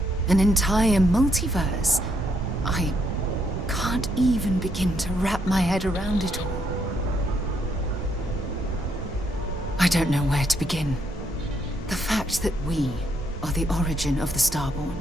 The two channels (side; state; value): both; normal; correlation 0.75